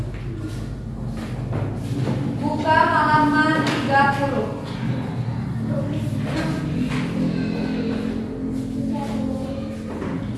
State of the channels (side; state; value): both; identical; correlation 1.00